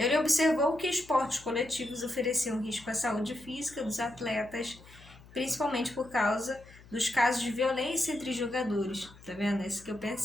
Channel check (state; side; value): noise; left; hum, 22 dB below the sound